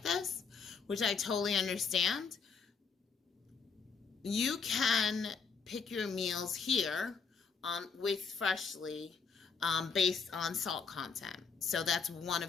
this, which I totally understand. You can pick your meals here with Freshly based on salt content. So that's one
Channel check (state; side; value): quieter; right; 5.5 dB